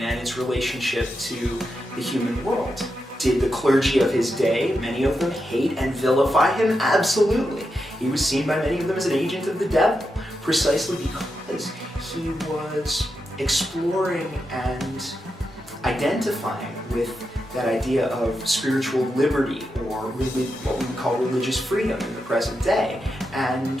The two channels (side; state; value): both; normal; correlation 0.87